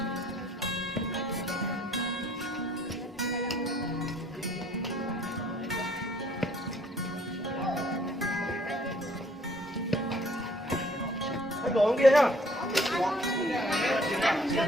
Đồ kia nhá.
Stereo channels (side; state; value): both; normal; correlation 0.60